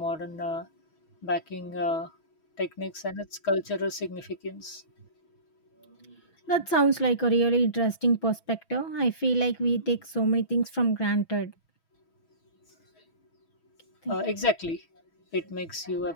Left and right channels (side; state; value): right; late; 6.0 ms